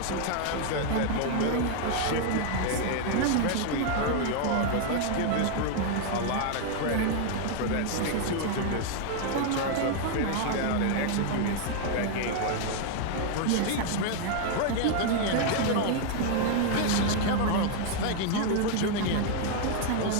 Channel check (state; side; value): different; both; correlation 0.00